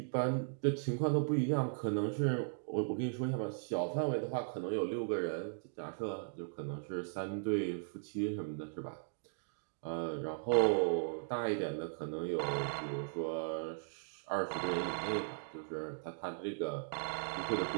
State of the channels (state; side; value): silent; left; digital silence